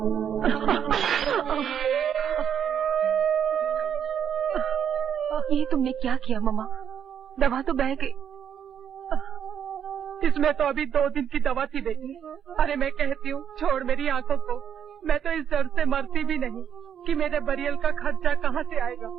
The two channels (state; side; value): quieter; left; 8.6 dB